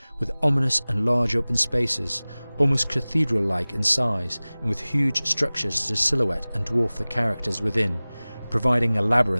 with ominous and large open spaces, almost cathedral-like in size, and with huge structures to silhouette and dwarf the characters within, providing a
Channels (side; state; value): both; inverted; correlation -0.99